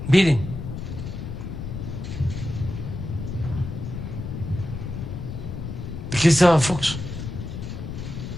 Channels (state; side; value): noise; left; rumble, 6 dB below the sound